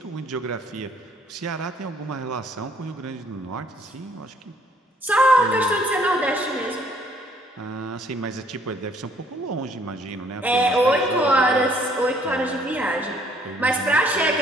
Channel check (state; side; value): normal; both; correlation 0.63